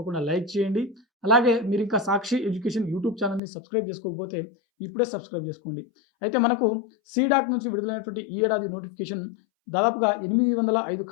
లైక్ చేయండి. అలాగే మీరింకా సాక్షి ఎడ్యుకేషన్ యూట్యూబ్ ఛానెల్‌ని సబ్స్క్రైబ్ చేసుకోకపోతే ఇప్పుడే సబ్స్క్రైబ్ చేసుకోండి. అయితే మనకు సీడాక్ నుంచి విడుదలైనటువంటి ఈ ఏడాది నోటిఫికేషన్ దాదాపుగా 805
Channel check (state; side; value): drops out; right; at 3.4 s